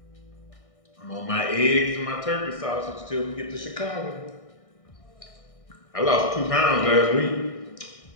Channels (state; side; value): late; right; 1.6 ms